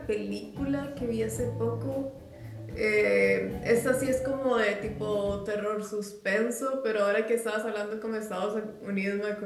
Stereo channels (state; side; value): identical; both; correlation 1.00